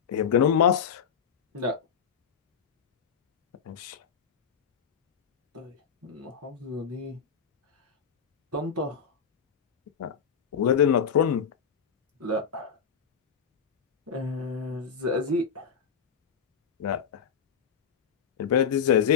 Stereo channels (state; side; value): quieter; right; 7.1 dB